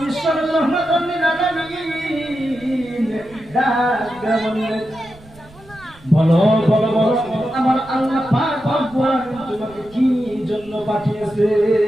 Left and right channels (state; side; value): noise; right; rumble, 24 dB below the sound